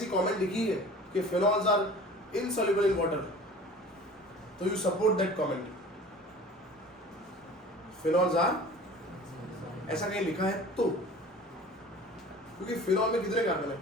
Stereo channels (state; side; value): normal; both; correlation 0.43